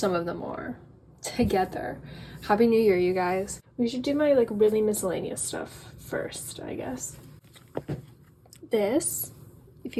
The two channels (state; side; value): identical; both; correlation 1.00